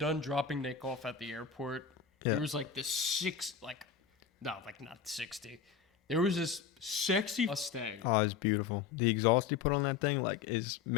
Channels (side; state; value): right; quieter; 6.7 dB